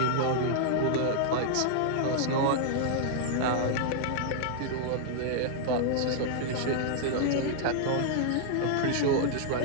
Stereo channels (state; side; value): different; both; correlation -0.01